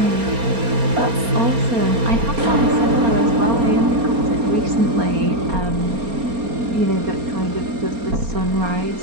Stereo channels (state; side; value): late; left; 4.3 ms